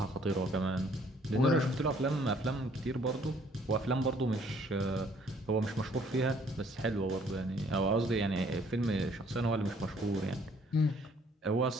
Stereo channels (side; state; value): both; normal; correlation 0.61